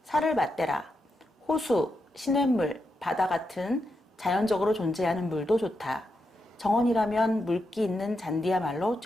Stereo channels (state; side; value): normal; both; correlation 0.85